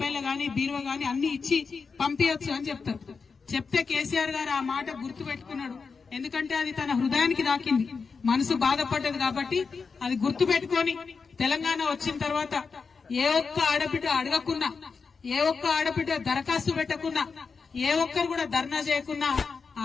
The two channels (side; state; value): right; quieter; 5.1 dB